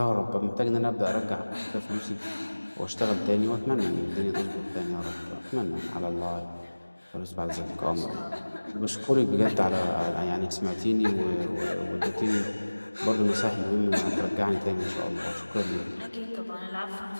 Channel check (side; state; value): both; inverted; correlation -1.00